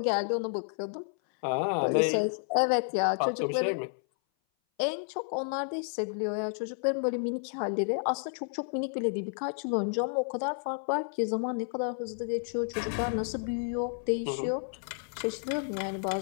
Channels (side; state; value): right; silent; 57 dB below the other